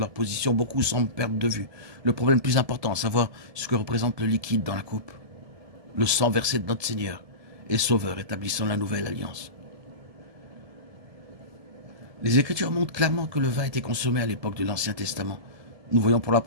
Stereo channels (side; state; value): left; late; 1.7 ms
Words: position, beaucoup semblent perdre de vue le problème plus important, à savoir ce que représente le liquide dans la coupe, le sang versé de notre Seigneur et Sauveur établissant la nouvelle alliance. Les Écritures montrent clairement que le vin était consommé à l'époque de l'Ancien Testament. Nous voyons pour la